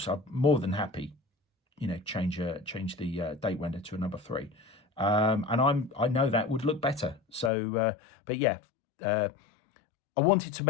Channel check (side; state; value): right; drops out; at 7.5 s